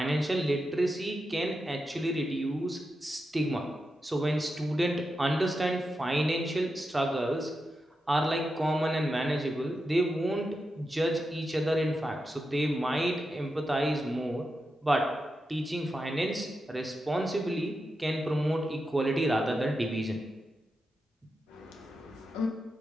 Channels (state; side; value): normal; both; correlation 0.88